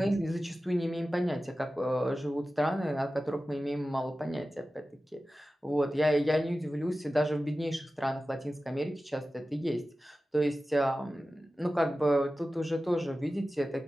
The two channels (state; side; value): normal; both; correlation 0.95